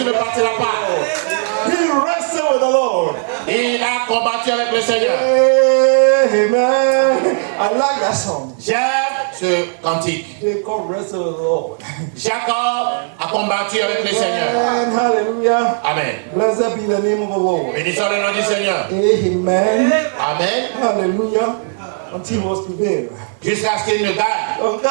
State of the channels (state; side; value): silent; left; 66 dB below the other